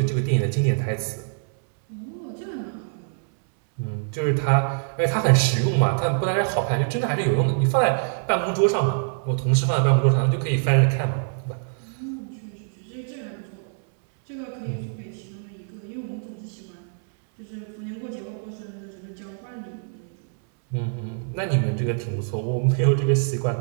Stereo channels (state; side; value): silent; left; 62 dB below the other